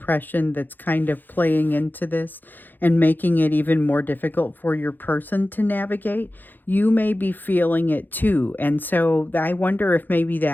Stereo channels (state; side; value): late; right; 0.089 ms